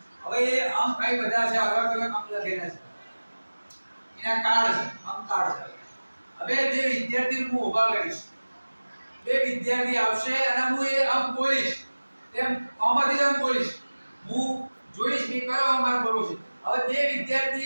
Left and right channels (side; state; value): both; inverted; correlation -1.00